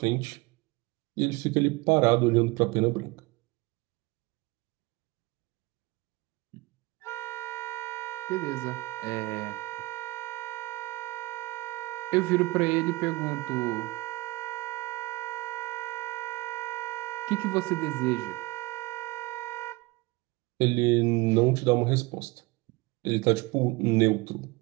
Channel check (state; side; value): quieter; left; 22.2 dB